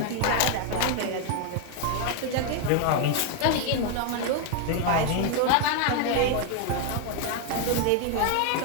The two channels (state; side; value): different; both; correlation 0.00